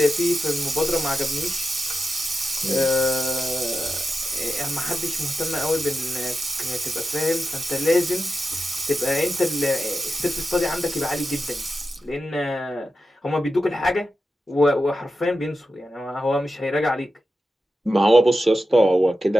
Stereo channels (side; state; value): both; normal; correlation 0.91